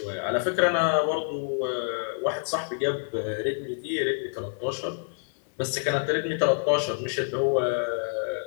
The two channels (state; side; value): silent; right; 60 dB below the other